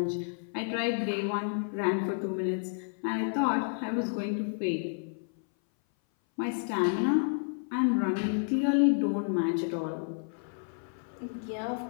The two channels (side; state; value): right; silent; 57 dB below the other